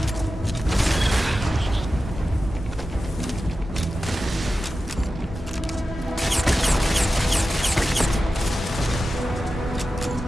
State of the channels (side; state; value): both; normal; correlation 0.93